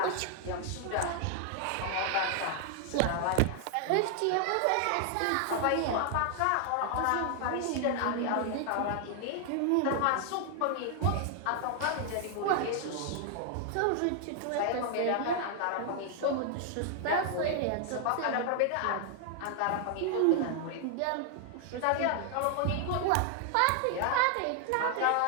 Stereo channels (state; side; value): different; both; correlation 0.00